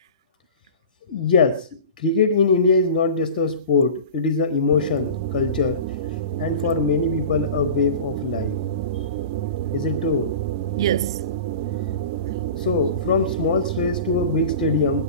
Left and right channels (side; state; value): both; inverted; correlation -0.36